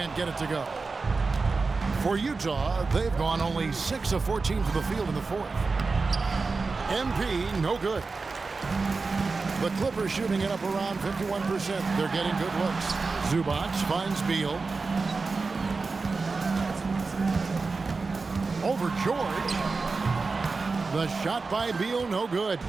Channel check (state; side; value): quieter; left; 4.1 dB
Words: get it to go. For Utah, they've gone only 6 of 14 to the field in the fourth. MP, no good. The Clippers shooting it up around 51%. They're getting good looks. Zubac finds Beal. Over George. The shot by Beal, no good.